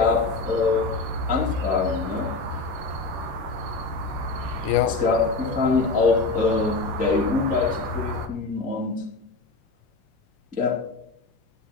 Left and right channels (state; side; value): quieter; right; 3.6 dB